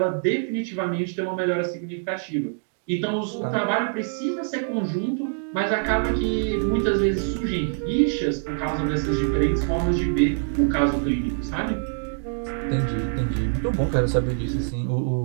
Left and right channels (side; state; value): left; silent; digital silence